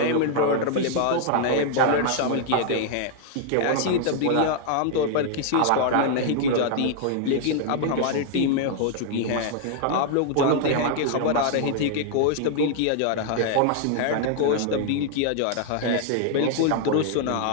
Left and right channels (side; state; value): both; different; correlation 0.00